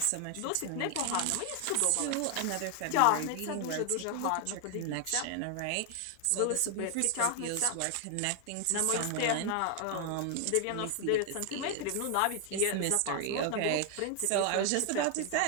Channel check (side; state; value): both; different; correlation 0.00